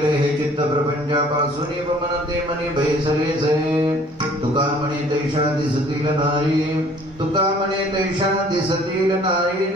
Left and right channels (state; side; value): normal; both; correlation 0.55